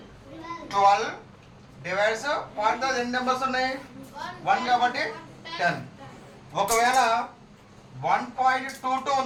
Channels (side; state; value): both; identical; correlation 1.00